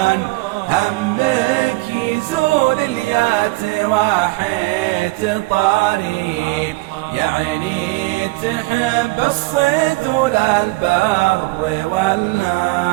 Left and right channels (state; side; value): quieter; left; 22.7 dB